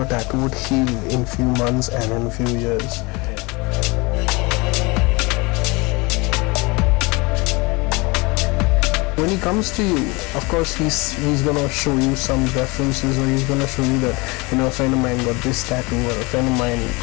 tattoo would heal in few months and in a few years. When he comes to you, of course he's gonna show you some references, or he's gonna show you that, a friend of mine got this tattoo, or a friend of mine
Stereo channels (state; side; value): quieter; right; 26.0 dB